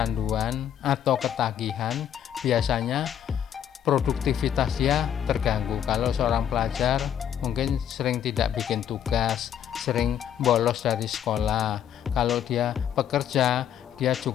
atau ketagihan, biasanya produktivitas dia terganggu. Kalau seorang pelajar mungkin sering tidak bikin tugas, sering bolos dari sekolah. Kalau dia pekerja, dia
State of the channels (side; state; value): right; quieter; 9.7 dB